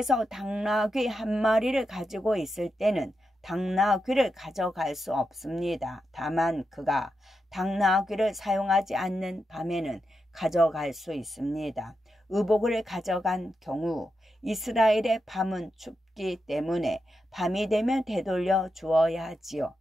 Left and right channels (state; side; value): normal; both; correlation 0.87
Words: 당나귀 한 마리를 가지고 있을 때는 당나귀를 가져갈 수 없습니다. 다만 그가 당나귀를 사용하지 않는 밤에는 가져갈 수 있습니다. 의복을 가져간 경우 이스라엘의 밤은 춥기 때문에 밤이 되면 되돌려 주어야 하지요.